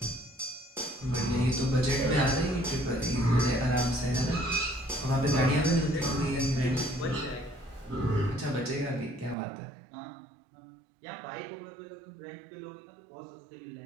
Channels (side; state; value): left; drops out; at 9.3 s